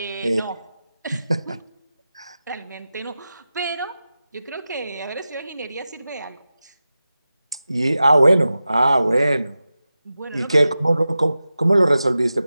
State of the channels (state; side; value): inverted; both; correlation -0.93